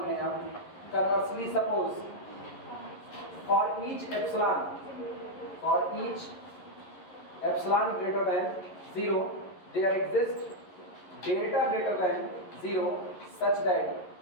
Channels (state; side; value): late; right; 11 ms